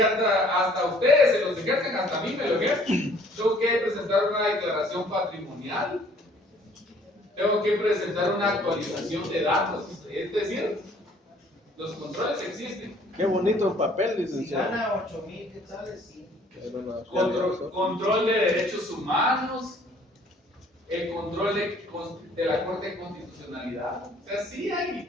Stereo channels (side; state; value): both; normal; correlation 0.58